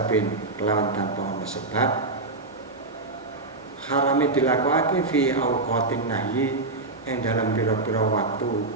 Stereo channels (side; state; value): left; quieter; 3.3 dB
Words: kelawan tanpa ana sebab. Harame dilakokake fi auqatin nahyi ing dalam pira-pira waktu